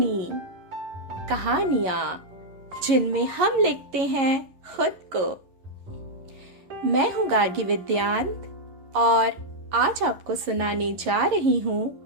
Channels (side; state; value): left; late; 11 ms